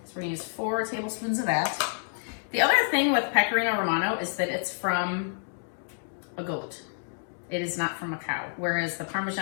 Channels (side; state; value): right; silent; digital silence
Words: we're gonna use 4 tablespoons of that. The other thing with Pecorino Romano is that it's from a goat. It is not from a cow, whereas the